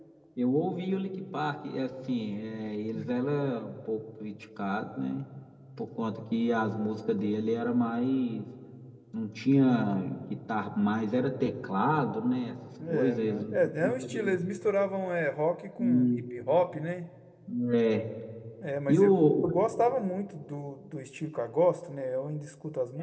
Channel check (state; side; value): identical; both; correlation 1.00